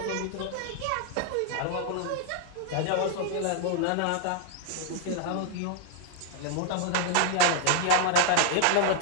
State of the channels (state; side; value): different; both; correlation 0.00